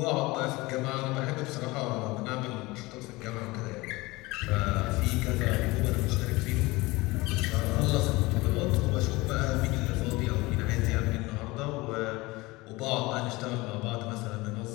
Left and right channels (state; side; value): quieter; right; 21.9 dB